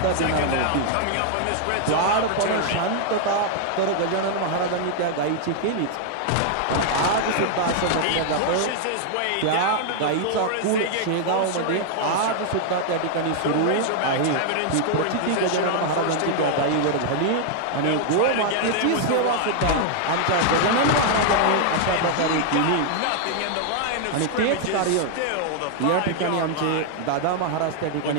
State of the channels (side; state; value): both; different; correlation 0.00